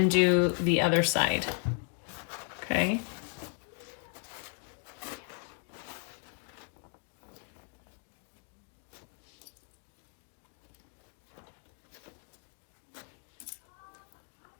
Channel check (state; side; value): quieter; right; 37.2 dB